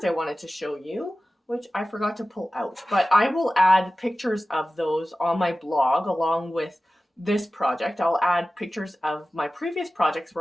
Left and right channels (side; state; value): both; normal; correlation 0.96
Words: I wanted to show you, which I forgot to pull out, but I will add pictures of those on my blog along with this project. I'll add pictures of my previous projects